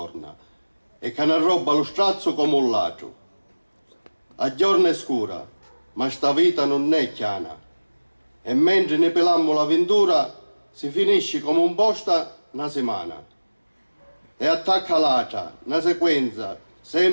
E che ne roba lo strazzo come un ladro. A giorno è scura, ma sta vita non è chiana. E mentre ne pelammo l'avventura, si finisce come un posta una settimana. E attacca l'altra, una sequenza,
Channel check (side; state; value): both; inverted; correlation -1.00